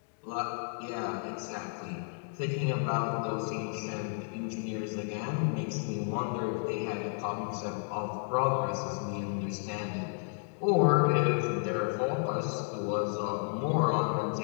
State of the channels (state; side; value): silent; right; 56 dB below the other